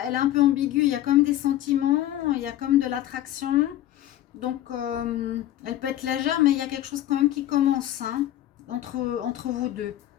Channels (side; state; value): right; quieter; 13.3 dB